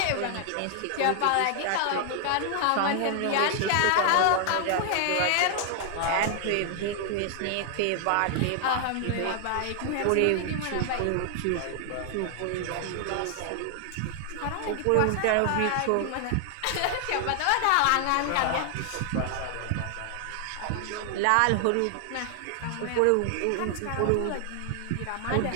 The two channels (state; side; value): different; both; correlation 0.00